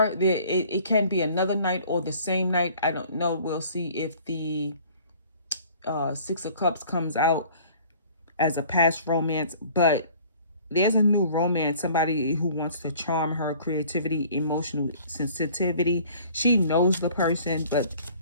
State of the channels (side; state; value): both; inverted; correlation -0.51